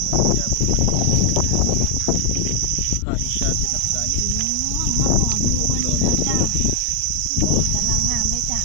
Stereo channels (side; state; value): both; different; correlation 0.00